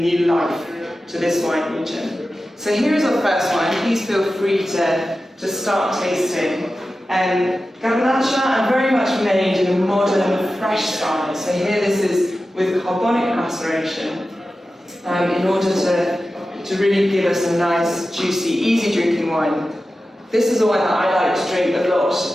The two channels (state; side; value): normal; both; correlation 0.94